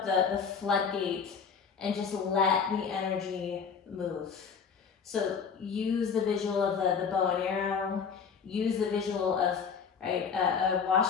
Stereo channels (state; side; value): quieter; right; 6.2 dB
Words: the floodgate and just let the energy move. So use the visual of the bow and arrow. Use the visual of a